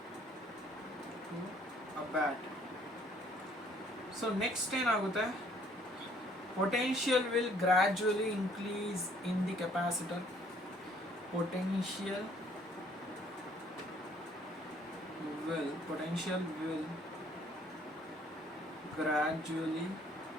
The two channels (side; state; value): both; normal; correlation 0.61